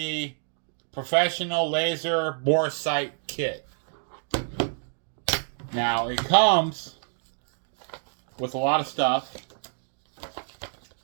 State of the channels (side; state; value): left; silent; digital silence